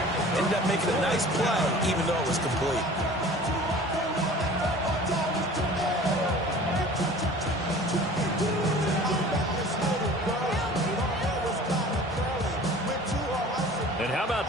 Ended up making a nice play, even though it was complete. And how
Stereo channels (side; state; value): both; normal; correlation 0.44